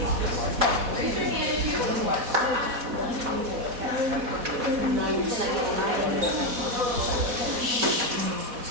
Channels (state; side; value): late; left; 4.1 ms